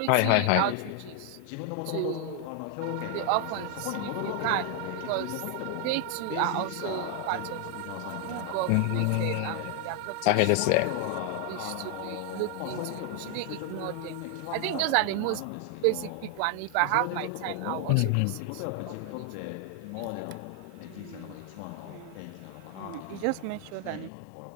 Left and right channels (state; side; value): different; both; correlation 0.00